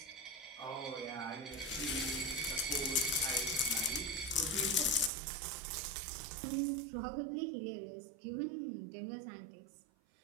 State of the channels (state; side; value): drops out; left; at 5.1 s